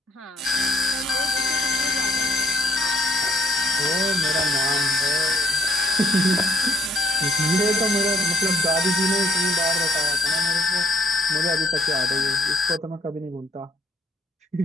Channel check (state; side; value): normal; both; correlation 0.65